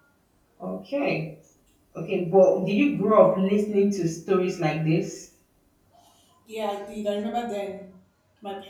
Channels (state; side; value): identical; both; correlation 1.00